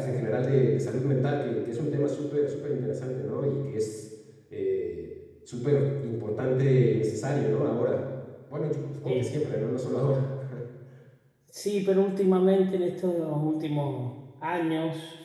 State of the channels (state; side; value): identical; both; correlation 1.00